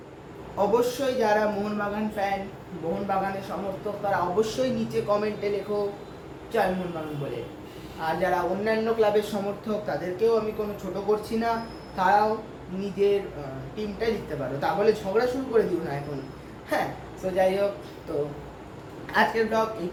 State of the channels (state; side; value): identical; both; correlation 1.00